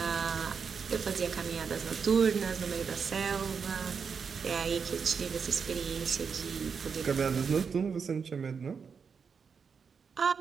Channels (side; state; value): left; quieter; 6.0 dB